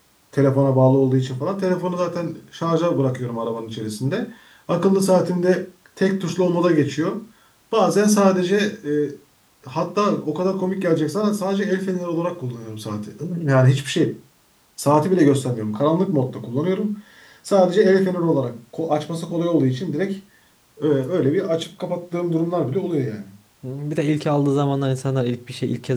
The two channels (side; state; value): both; identical; correlation 1.00